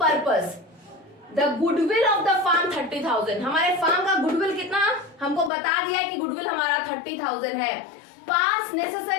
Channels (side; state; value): right; drops out; at 5.5 s